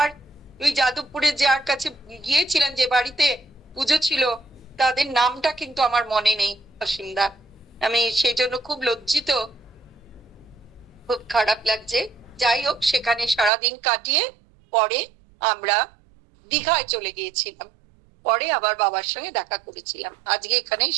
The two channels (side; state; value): left; drops out; at 13.5 s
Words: ওই যাদবপুরে যার কাছে গিয়েছিলেন, যে বাড়িতে পুজো ছিল, তাদের নামটা কিন্তু আমার মনে নেই অসীমদা। আমি সেই জন্য খুব লজ্জিত, খুব খারাপ লাগছে। যাই হোক, সেখানে সারাদিন কাটিয়ে পরে আমরা দীঘায় চলে গিয়েছিলাম, পরে আবার বাবার সঙ্গে দেখা করেছিলাম। আজকে এখানেই